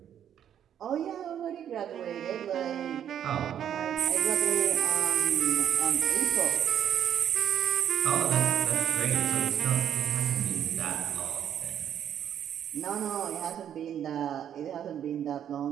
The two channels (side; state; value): left; quieter; 9.6 dB